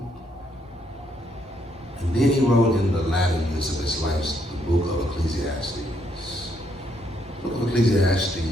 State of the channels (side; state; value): both; normal; correlation 0.73